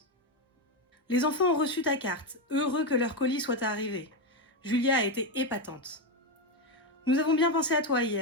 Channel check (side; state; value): both; normal; correlation 0.09